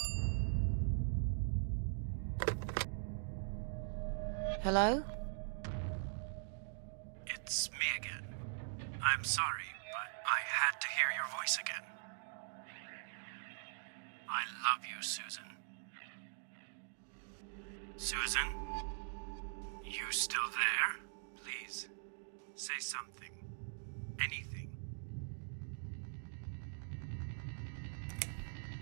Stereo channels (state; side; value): silent; left; digital silence